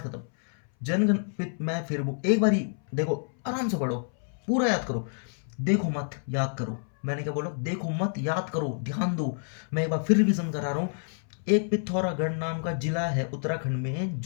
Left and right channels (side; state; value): right; silent; 59 dB below the other